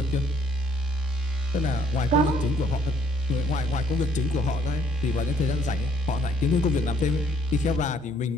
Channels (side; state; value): both; normal; correlation 0.64